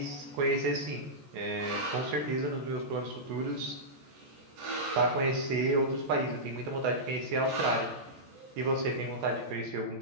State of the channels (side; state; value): left; late; 14 ms